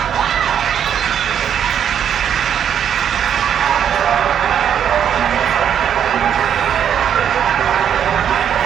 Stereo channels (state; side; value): quieter; left; 8.8 dB